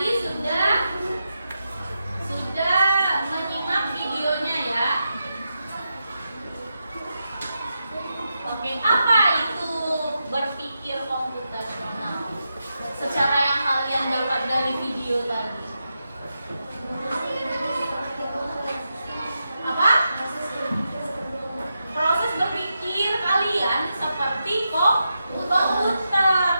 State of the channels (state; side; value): inverted; both; correlation -0.87